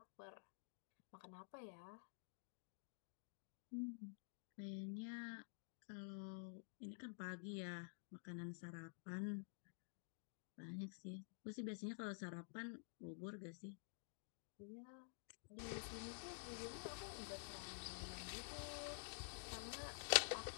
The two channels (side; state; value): right; silent; digital silence